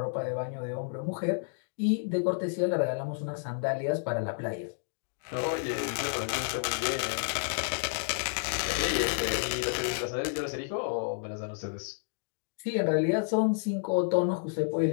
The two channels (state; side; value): silent; right; digital silence